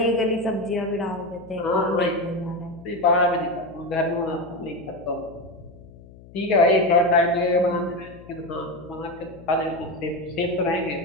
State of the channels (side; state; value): left; noise; hum, 21 dB below the sound